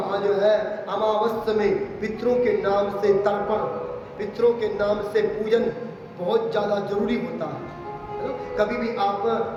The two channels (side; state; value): both; identical; correlation 1.00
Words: जो है अमावस्या में पितरों के नाम से तर्पण, पितरों के नाम से पूजन बहुत ज़्यादा जरूरी होता है ना? कभी भी आप